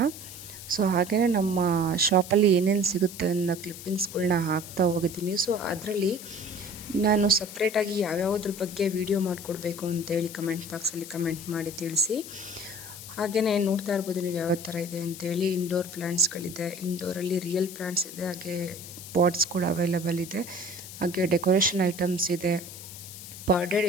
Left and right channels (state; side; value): noise; left; hiss, 13 dB below the sound